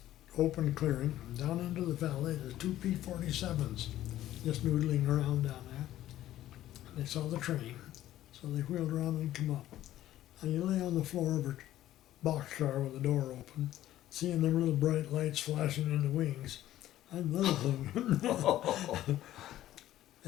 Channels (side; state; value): right; quieter; 13.6 dB